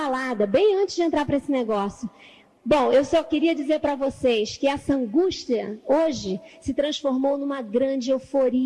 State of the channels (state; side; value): identical; both; correlation 1.00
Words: bem antes de entrar para esse negócio. Bom, eu só queria dizer para vocês que essa angústia hoje se transformou numa grande